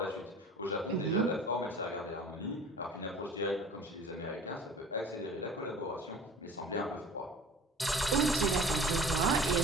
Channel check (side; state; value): both; normal; correlation 0.44